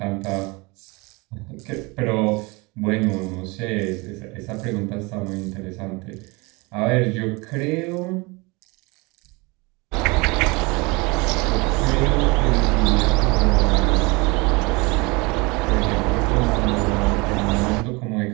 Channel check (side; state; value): left; quieter; 26.2 dB